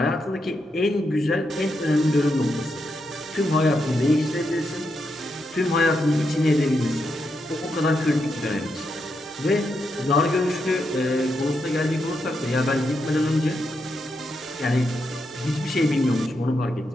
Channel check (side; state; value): both; normal; correlation 0.83